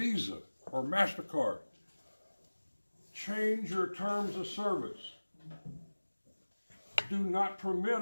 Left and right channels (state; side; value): inverted; both; correlation -1.00